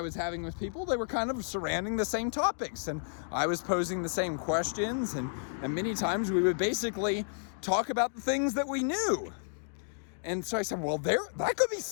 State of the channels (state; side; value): silent; right; digital silence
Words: was having with people, they were kind of surrounding the same topics. And I was posing the same questions. And many times we would basically talk about the things that we knew. And so I said, well, that could be